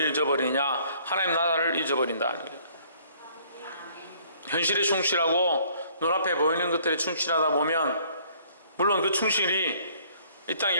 하나님 나라를 잊어버린다는 거예요. 현실에 충실하고 눈앞에 보이는 것들에 충실하다 보면 물론 그 충실이 이 땅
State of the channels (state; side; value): inverted; both; correlation -0.60